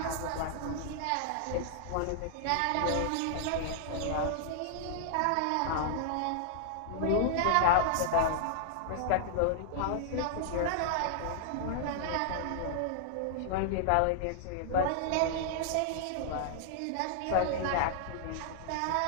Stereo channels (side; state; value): both; different; correlation -0.01